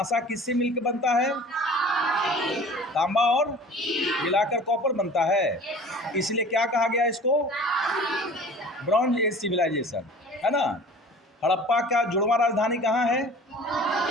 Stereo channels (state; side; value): normal; both; correlation 0.44